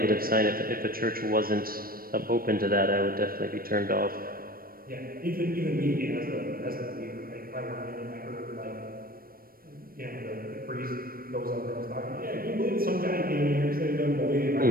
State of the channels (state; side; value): late; left; 0.43 ms